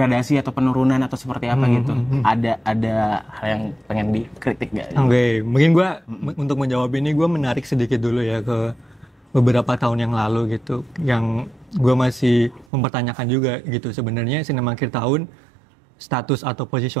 atau penurunan atau seperti apa gitu? Ada hal yang pengen dikritik nggak? Oke, mungkin gue untuk menjawab ini gue menarik sedikit dulu ya ke beberapa tahun yang lalu gitu, yang gue masih mempertanyakan juga gitu sebenarnya Cinema Akhir Tahun status atau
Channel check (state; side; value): drops out; left; at 12.7 s